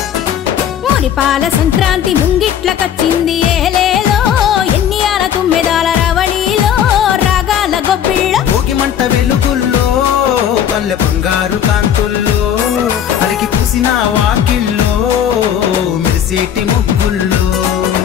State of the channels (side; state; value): right; quieter; 9.4 dB